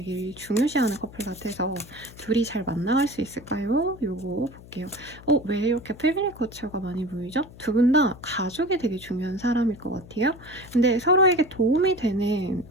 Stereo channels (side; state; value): left; noise; hum, 19 dB below the sound